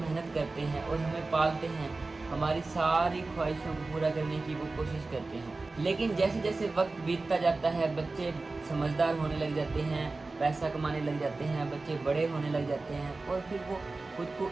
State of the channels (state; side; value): quieter; left; 3.5 dB